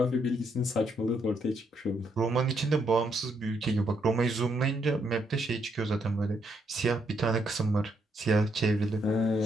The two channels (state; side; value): normal; both; correlation 0.76